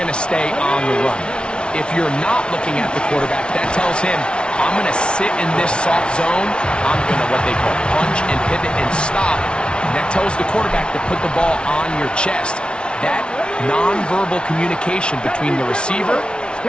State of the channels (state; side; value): late; right; 0.057 ms